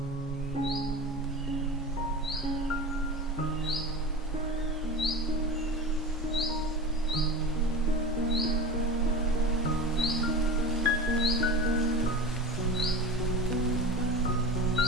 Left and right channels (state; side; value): normal; both; correlation 0.30